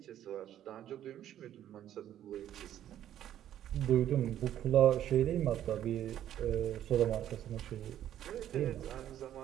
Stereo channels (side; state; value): left; quieter; 11.4 dB